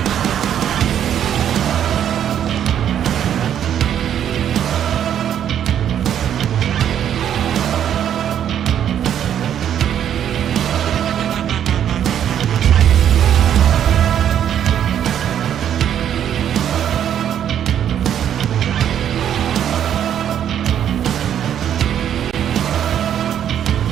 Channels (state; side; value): quieter; left; 9.8 dB